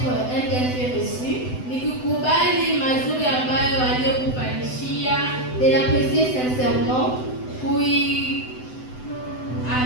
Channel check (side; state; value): right; late; 7.9 ms